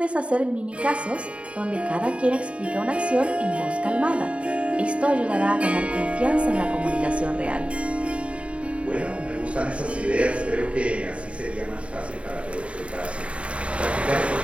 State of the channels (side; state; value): left; late; 0.061 ms